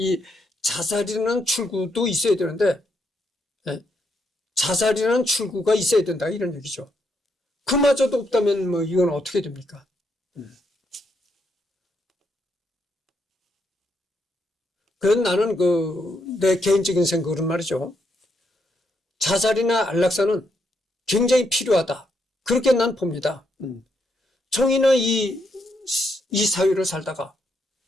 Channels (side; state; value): both; normal; correlation 0.78